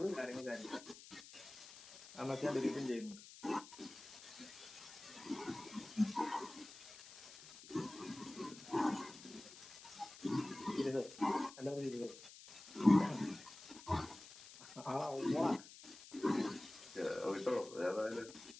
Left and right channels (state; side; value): noise; left; hiss, 16 dB below the sound